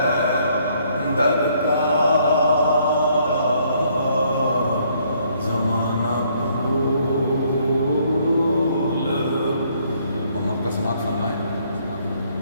در کا، زمانہ بھول محمد کا سماعت فرمائے،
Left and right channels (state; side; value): inverted; both; correlation -0.67